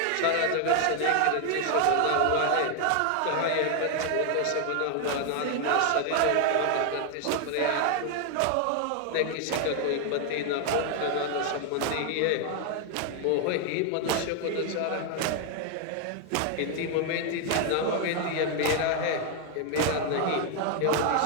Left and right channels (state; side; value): different; both; correlation 0.00